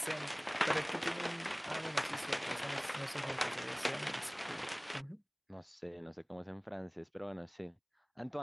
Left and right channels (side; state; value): both; identical; correlation 1.00